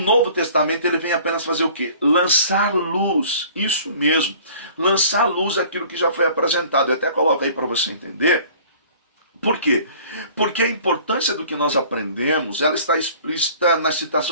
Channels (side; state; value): both; inverted; correlation -0.50